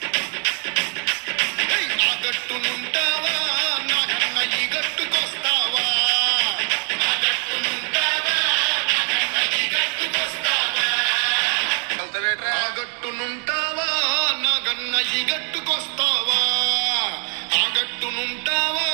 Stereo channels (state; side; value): quieter; left; 37.5 dB